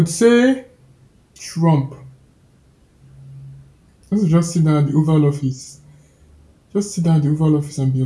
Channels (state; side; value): identical; both; correlation 1.00